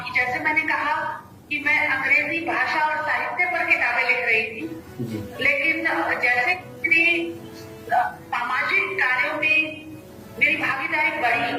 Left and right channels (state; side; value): identical; both; correlation 1.00